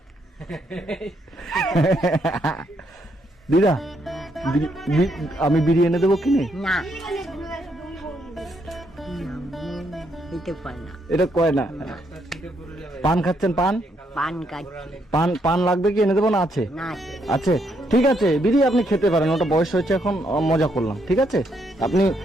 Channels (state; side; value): normal; both; correlation 0.75